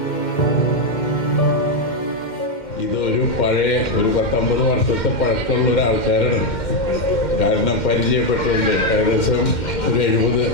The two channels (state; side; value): late; right; 2.1 ms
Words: പഴയ ഒരു 10-50 വർഷത്തെ പഴക്കമുള്ള ഒരാൾക്കാരാണ്. കാരണം പരിചയപ്പെട്ടുകൊണ്ട് ഏകദേശം ഒരു 70